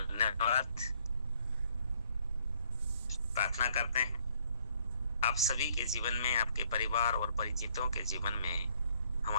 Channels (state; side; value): inverted; both; correlation -0.65